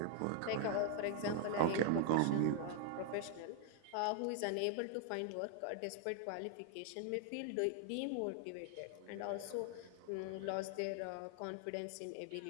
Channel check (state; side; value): different; both; correlation 0.00